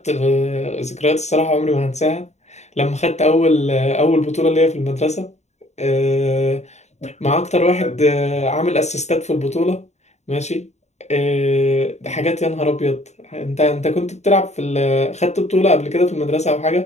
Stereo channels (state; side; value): late; right; 0.33 ms